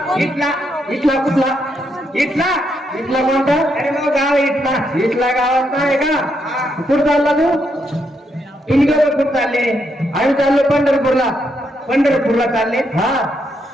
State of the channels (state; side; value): normal; both; correlation 0.78